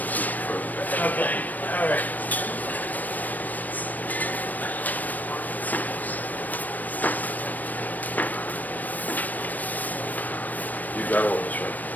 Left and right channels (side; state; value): right; late; 0.083 ms